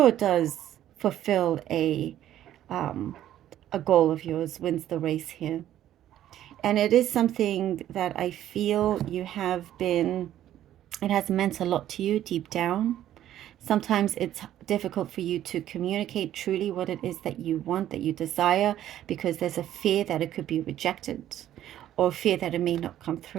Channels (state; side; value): quieter; left; 12.1 dB